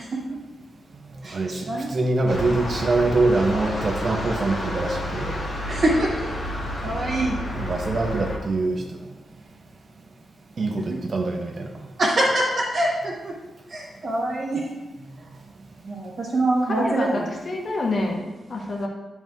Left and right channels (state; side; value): normal; both; correlation 0.86